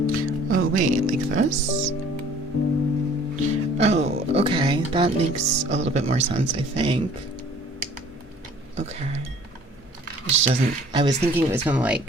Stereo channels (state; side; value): normal; both; correlation 0.52